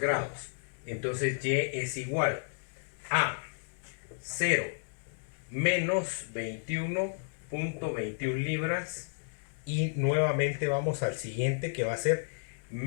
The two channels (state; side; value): silent; right; 56 dB below the other